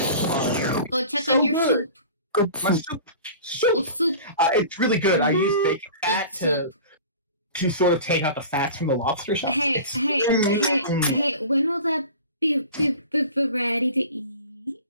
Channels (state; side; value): inverted; both; correlation -0.39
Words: Go check on your soup. Good My soup. soup. Go soup. It's really good. I use bacon fat Good to sort of take out the fats from the lobster shell. Hey, when will that be ready to eat?